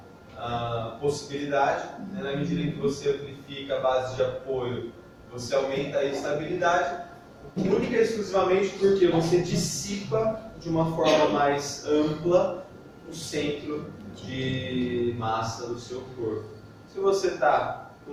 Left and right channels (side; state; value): both; identical; correlation 1.00